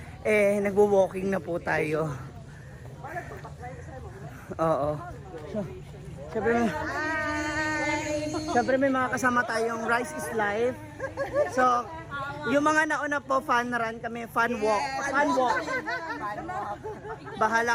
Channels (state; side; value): identical; both; correlation 1.00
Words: Eh nagwo-walking na po tayo. Oo. So, syempre may mga kasama tayong Rice is Life. So yung mga nauna po fun run kami, fun walk. Fun walk.